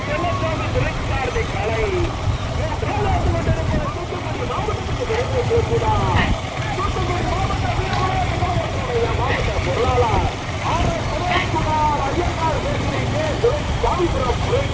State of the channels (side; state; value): both; identical; correlation 1.00